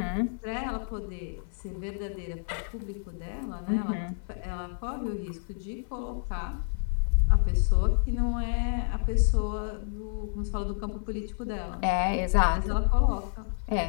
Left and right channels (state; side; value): silent; right; 58 dB below the other